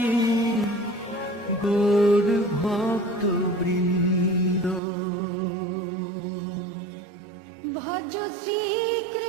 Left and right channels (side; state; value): left; drops out; at 4.8 s